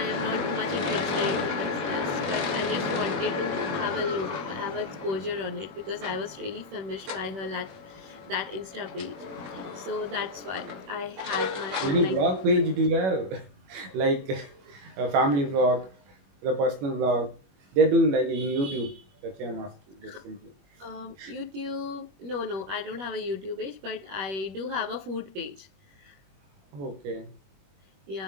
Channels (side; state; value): left; late; 21 ms